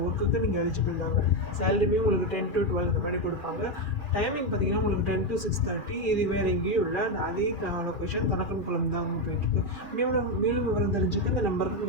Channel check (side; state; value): right; late; 2.4 ms